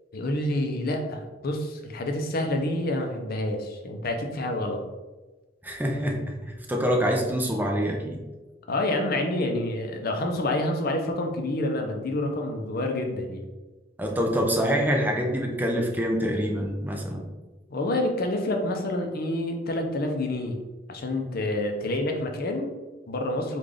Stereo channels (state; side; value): normal; both; correlation 0.48